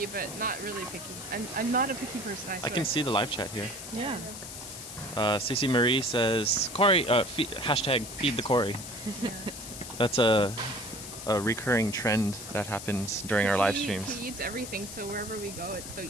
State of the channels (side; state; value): left; noise; hiss, 10 dB below the sound